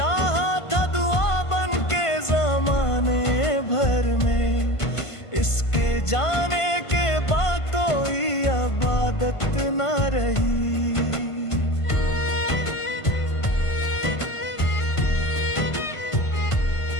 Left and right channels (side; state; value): right; late; 1.5 ms